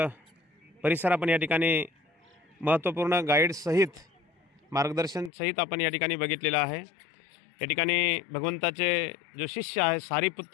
परिसर आपण या ठिकाणी महत्त्वपूर्ण गाईडसहित मार्गदर्शनसहित आपण या ठिकाणी बघितलेला आहे. या ठिकाणी भगवंताचे जो शिष्य आहे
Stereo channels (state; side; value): drops out; right; at 5.3 s